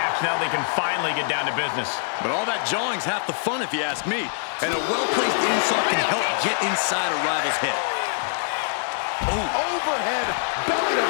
Now they can finally get down to business. But all that jawing's half the fun if you ask me. And a well-placed insult can help get inside a rival's head. Oh. Overhead, belly to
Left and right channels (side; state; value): right; silent; digital silence